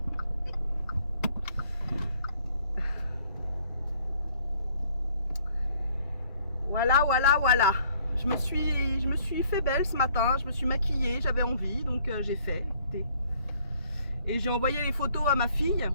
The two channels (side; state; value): both; inverted; correlation -0.62